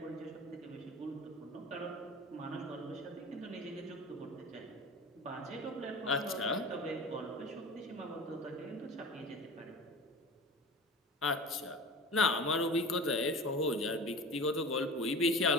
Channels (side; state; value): both; normal; correlation 0.35